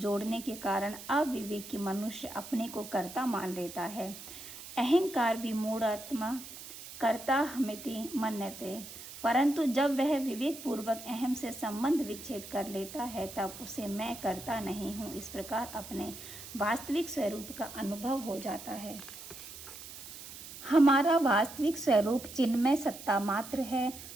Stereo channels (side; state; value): right; noise; hiss, 13 dB below the sound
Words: जोड़ने के कारण अविवेकी मनुष्य अपने को कर्ता मान लेता है। अहंकार विमूढ़ात्मा कर्ताहमिति मन्यते, परंतु जब वह विवेक पूर्वक अहम से संबंध विच्छेद कर लेता है तब उसे मैं कर्ता नहीं हूँ इस प्रकार अपने वास्तविक स्वरूप का अनुभव हो जाता है। हमारा वास्तविक स्वरूप चिन्मय सत्ता मात्र है।